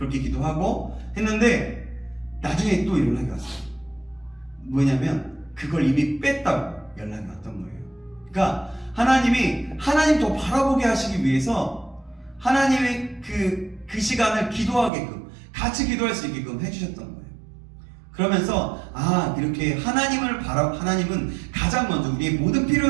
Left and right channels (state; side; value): drops out; left; at 14.9 s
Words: 기도하고 했는데 나중에 또 연락이 왔어요. 뭐냐면 그걸 이미 뺐다고 연락이 왔던 거예요. 그러니까 하나님 더 바라보게 하시기 위해서 하나님의 그 시간을 기도하게끔 같이 기도할 수 있게끔 해주셨던 거예요. 그러면서 이렇게 하나님은 가장 먼저 우리의 모든